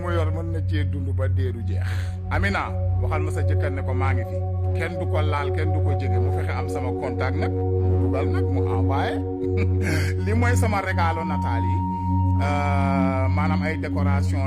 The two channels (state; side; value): identical; both; correlation 1.00